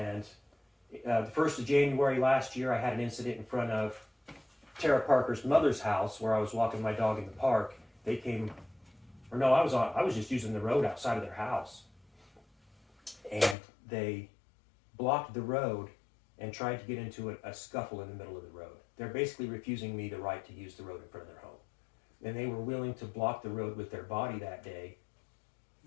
the 1st of January last year, I had an incident in front of Tara Parker's mother's house where I was walking my dog in the park. They came, or no, I was just using the road outside of their house. And they blocked the road and tried to get into a scuffle in the middle of the road. They're basically refusing me the right to use the road in front of their home. And they were willing to block the road with their body that day.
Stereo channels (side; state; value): right; drops out; at 13.6 s